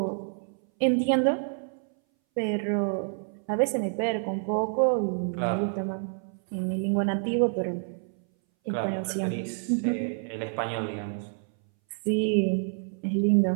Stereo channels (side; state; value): left; silent; 59 dB below the other